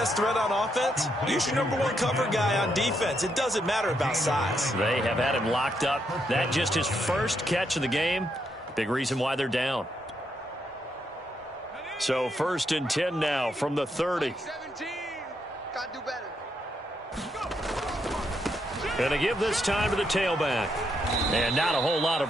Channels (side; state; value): both; normal; correlation 0.78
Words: threat on offense, use your #1 cover guy on defense. It doesn't matter about size. They have had him locked up. That just his first catch of the game. Big reason why they're down. So 1st and 10 now from the 30. 17. Got to do better. Gonna give this time to the tailback. And not a whole lot